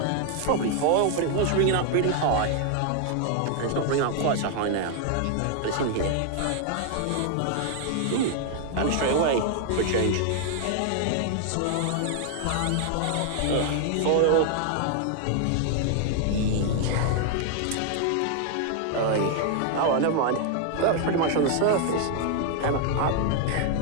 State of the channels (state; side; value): different; both; correlation 0.00